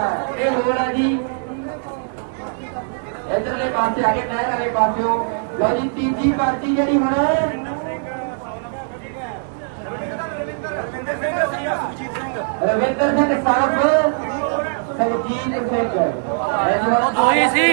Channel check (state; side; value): silent; left; digital silence